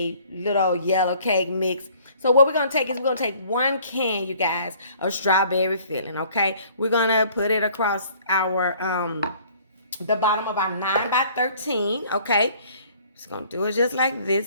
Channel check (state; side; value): inverted; both; correlation -0.56